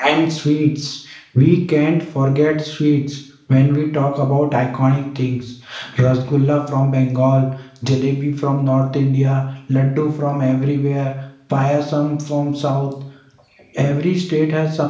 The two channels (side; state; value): both; identical; correlation 1.00